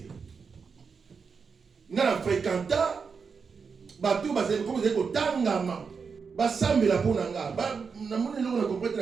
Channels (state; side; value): quieter; left; 5.5 dB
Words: Na fréquenta ba tout ba c'est comme c'est ko tangama. Ba sambela pona nga ba na mona lo na comprendre